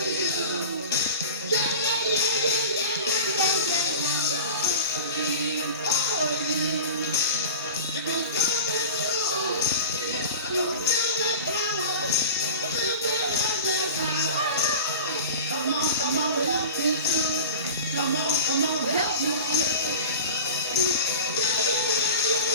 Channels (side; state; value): both; inverted; correlation -0.33